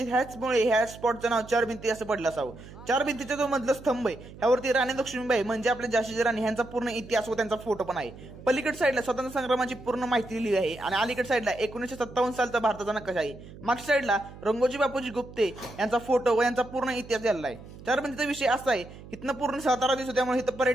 ह्याचमुळे ह्या स्पॉटचं नाव चार भिंती असं पडलं असावं। चार भिंतीचा जो मधला स्तंभ आहे ह्यावरती राणी लक्ष्मीबाई म्हणजे आपल्या झाशीची राणी ह्यांचा पूर्ण इतिहास व त्यांचा फोटो पण आहे। पलीकडे साईडला स्वतंत्र संग्रामाची पूर्ण माहिती लिहिली आहे आणि अलीकडे साईडला 1957 सालचा भारताचा नकाशा आहे। मागच्या साईडला रंगोजी बापूजी गुप्ते यांचा फोटो व यांचा पूर्ण इतिहास लिहिला आहे। चार भिंतीचा विषय असा आहे, इथनं पूर्ण सातारा दिसतो त्यामुळे इथं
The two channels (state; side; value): noise; right; hum, 17 dB below the sound